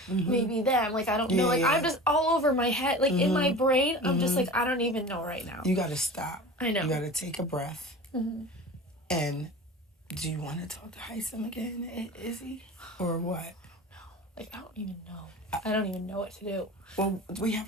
maybe them. Like, I don't know. Like, I'm just all over my head. Like, in my brain, I'm just like, I don't even know right now. You got to stop. I know. You got to take a breath. And do you want to talk to Heisem again, Izzy? Or what? No. Like, I don't even know. I don't even know what to do. Well, we have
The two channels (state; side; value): normal; both; correlation 0.35